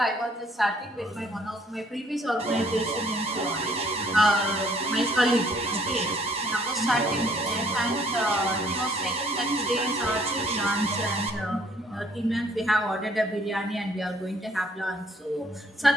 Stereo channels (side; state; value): both; normal; correlation 0.62